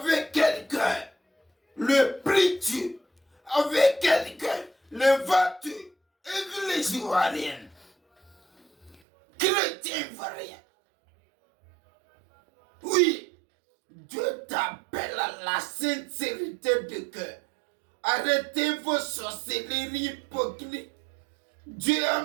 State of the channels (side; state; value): left; drops out; at 9.0 s